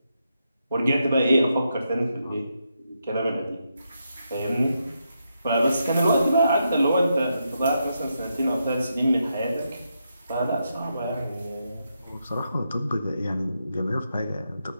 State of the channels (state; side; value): inverted; both; correlation -0.82